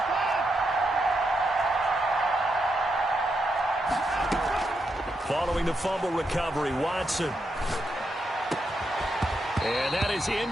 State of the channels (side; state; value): both; normal; correlation 0.83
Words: Following the fumble recovery, Watson. And that is